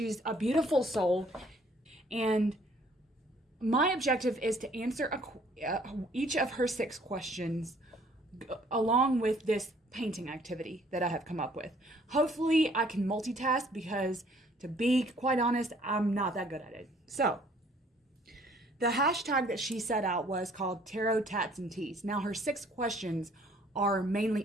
a beautiful soul, and my objective is to answer each of her 6 questions along with this painting activity that I have come up with. Hopefully I can multitask because, to be quite honest, I'm not that good at it. So the hashtag that she set out was called Tarot Tats and Teas. Now her 6 questions are mainly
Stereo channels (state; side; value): normal; both; correlation 0.60